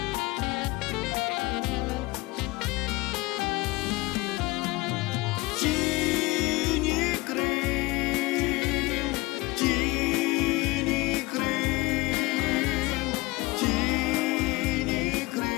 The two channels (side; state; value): right; quieter; 22.0 dB